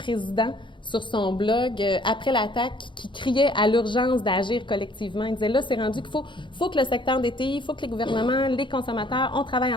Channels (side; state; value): right; late; 0.23 ms